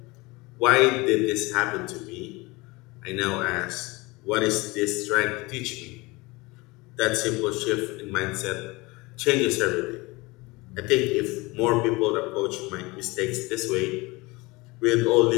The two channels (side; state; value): right; quieter; 23.6 dB